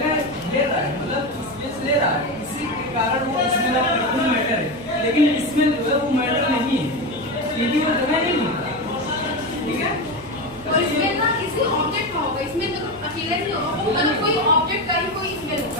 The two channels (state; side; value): noise; right; hum, 20 dB below the sound